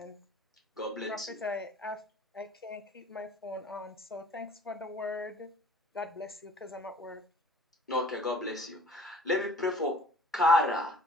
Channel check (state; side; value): normal; both; correlation 0.51